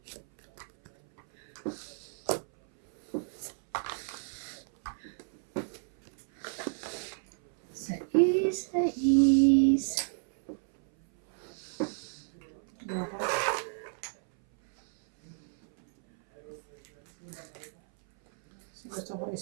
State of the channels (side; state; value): left; silent; 57 dB below the other